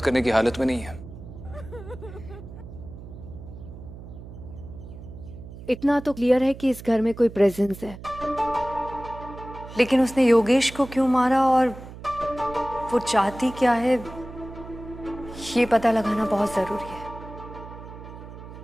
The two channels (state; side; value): noise; right; hum, 14 dB below the sound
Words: करने की हालत में नहीं है। इतना तो क्लियर है कि इस घर में कोई प्रेजेंस है, लेकिन उसने योगेश को क्यों मारा और वो चाहती क्या है, ये पता लगाना बहुत जरूरी है।